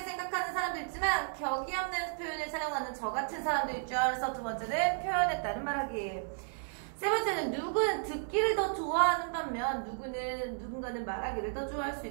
생각하는 사람도 있지만 격이 없는 표현을 사용하는 저 같은 사람도 있죠. 그래서 두 번째는 표현에 따른 말하기. 세 번째는 누구는 듣기를 더 좋아하는 반면 누군가는 말하기를 더 좋아할 수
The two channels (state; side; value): silent; left; digital silence